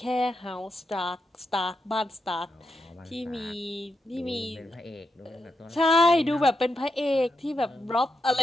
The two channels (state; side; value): normal; both; correlation 0.85